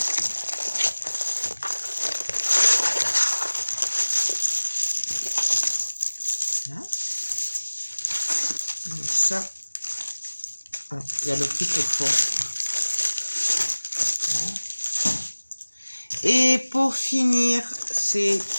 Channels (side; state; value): both; inverted; correlation -1.00